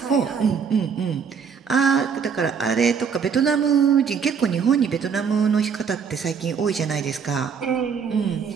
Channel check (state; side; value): quieter; left; 6.5 dB